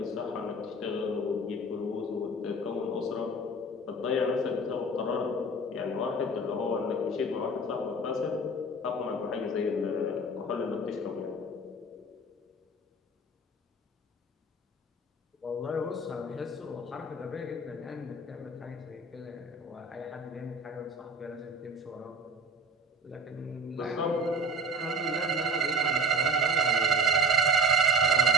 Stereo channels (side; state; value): both; normal; correlation 0.38